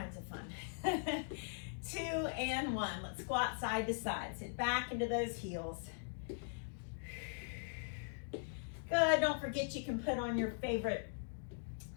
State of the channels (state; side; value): silent; right; digital silence